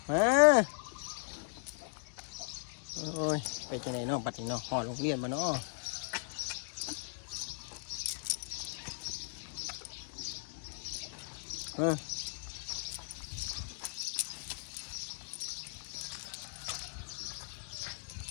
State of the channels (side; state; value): right; silent; digital silence